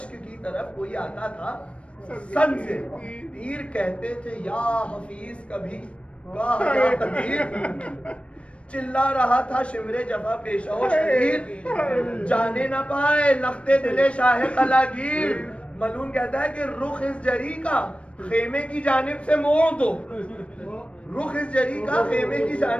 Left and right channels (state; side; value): late; right; 0.061 ms